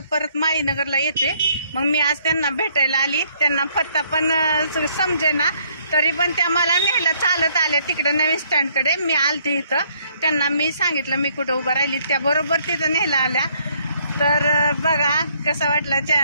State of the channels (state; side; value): inverted; both; correlation -0.66